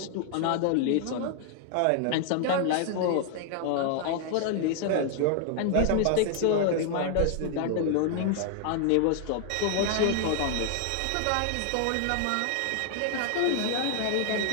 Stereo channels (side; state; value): both; different; correlation 0.00